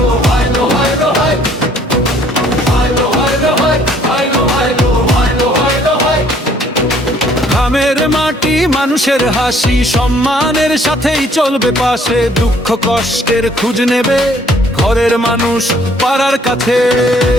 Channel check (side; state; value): both; normal; correlation 0.61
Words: গ্রামের মাটি মানুষের হাসি, সম্মানের সাথেই চলবে পাশে, দুঃখ কষ্টের খোঁজ নেবে ঘরের মানুষ পাড়ার কাছে।